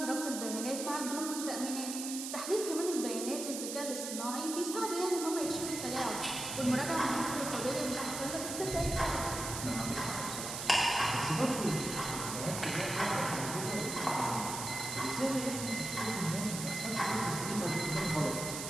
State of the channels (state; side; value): noise; right; hiss, 5 dB below the sound